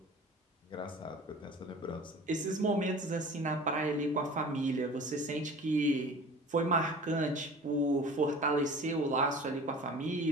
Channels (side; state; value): both; normal; correlation 0.41